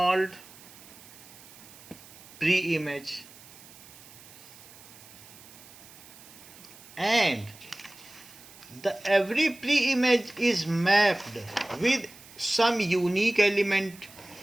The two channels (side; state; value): right; noise; hiss, 20 dB below the sound